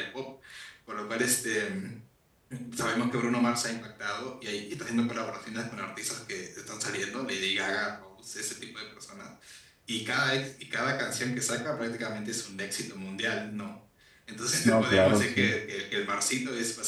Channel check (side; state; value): both; identical; correlation 1.00